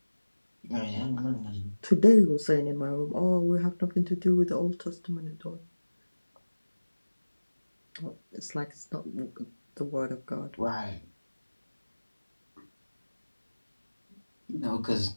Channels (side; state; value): both; inverted; correlation -1.00